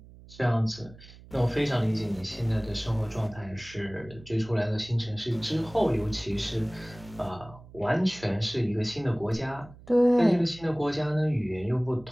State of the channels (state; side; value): noise; right; hum, 20 dB below the sound